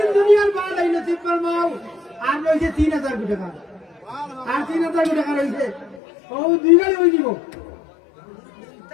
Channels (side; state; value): right; drops out; at 6.0 s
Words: দুনিয়ার বাদ এই নসিব ফরমাও আর রইছে 3000 টাকা আর 3000 টাকা রইছে ও দুই গাড়ি হই দিব